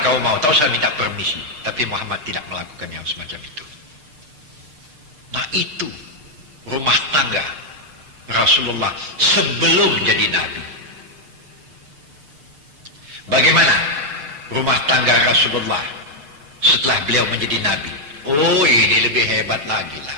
kau mau, tahu saya minta permisi. Tapi Muhammad tidak melakukan yang semacam itu. Nah itu rumah tangga Rasulullah sebelum jadi Nabi. Bagaimana rumah tangga Rasulullah setelah beliau menjadi Nabi? Oh, ini lebih hebat lagi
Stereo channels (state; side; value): late; left; 6.7 ms